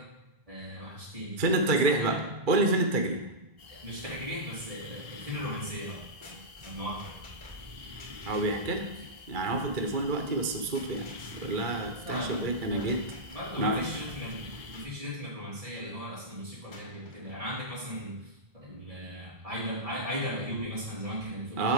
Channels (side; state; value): left; late; 2.3 ms